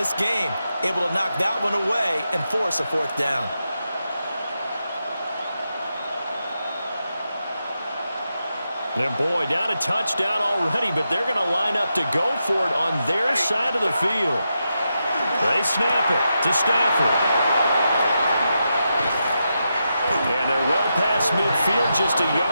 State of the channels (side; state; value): both; inverted; correlation -0.86